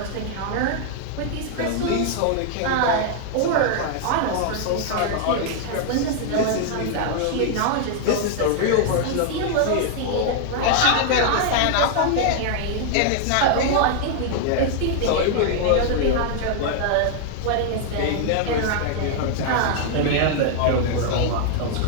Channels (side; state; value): both; different; correlation 0.00